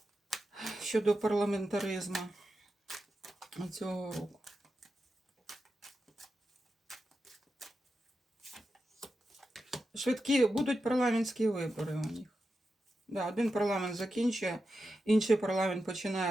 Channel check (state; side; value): normal; both; correlation 0.89